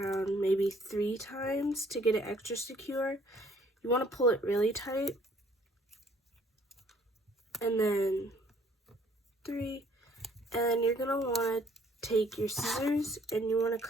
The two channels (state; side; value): normal; both; correlation 0.60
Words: maybe 3 times to get it extra secure. You want to pull it really tight. And then 3. And then you're going to want to take your scissors and you want to